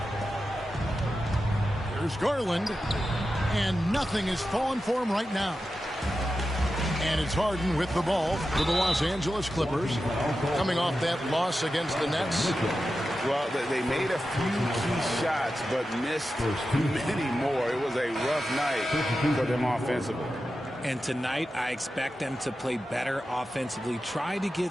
There's Garland, and nothing is falling for him right now. And it's Harden with the ball for the Los Angeles Clippers, coming off that loss against the Nets. Well, they made a few key shots, but missed many more. It was a rough night for them offensively. And tonight, I expect them to play better offensively, try to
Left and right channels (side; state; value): both; normal; correlation 0.91